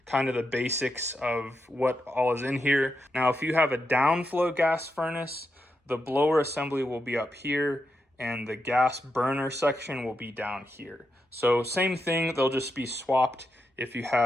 kind of the basics of what all is in here. Now, if you have a downflow gas furnace, the blower assembly will be up here and the gas burner section will be down here. So same thing, they'll just be swapped if you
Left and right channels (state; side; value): normal; both; correlation 0.85